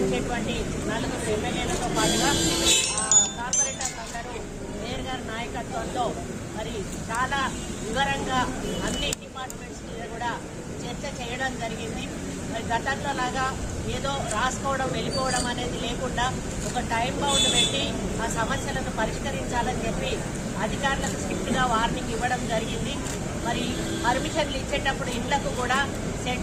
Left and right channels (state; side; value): identical; both; correlation 1.00